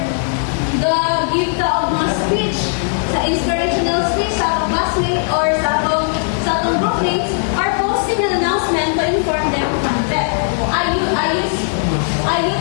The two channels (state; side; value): silent; right; digital silence